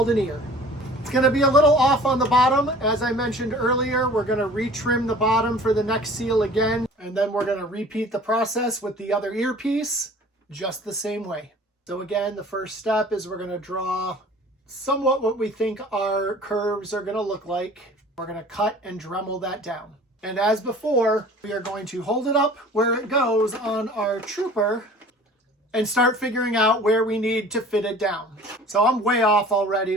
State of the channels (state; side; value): normal; both; correlation 0.47